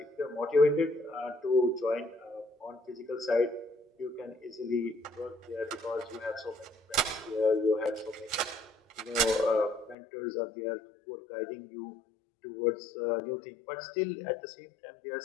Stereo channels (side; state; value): right; drops out; at 10.0 s